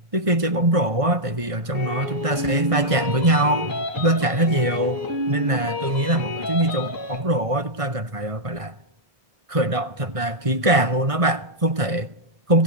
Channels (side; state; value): left; late; 1.6 ms